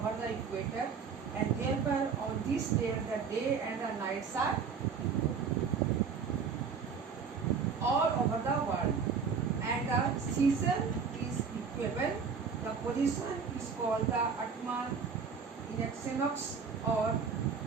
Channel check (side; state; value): left; quieter; 5.9 dB